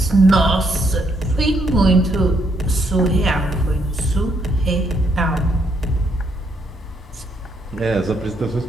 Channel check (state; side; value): normal; both; correlation 0.74